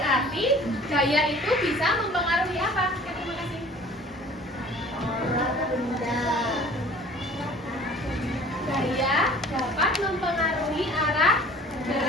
gaya itu bisa mempengaruhi apa? Terima kasih. Gaya dapat mempengaruhi arah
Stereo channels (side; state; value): both; normal; correlation 0.48